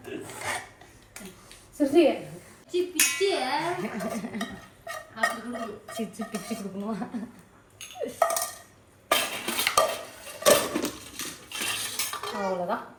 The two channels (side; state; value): both; identical; correlation 1.00